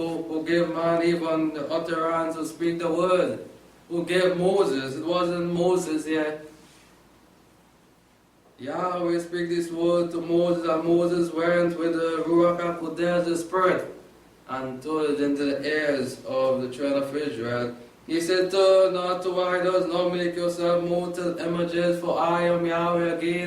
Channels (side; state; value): both; identical; correlation 1.00